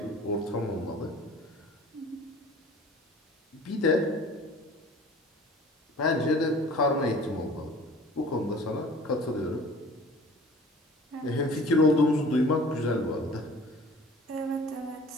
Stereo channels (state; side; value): normal; both; correlation 0.46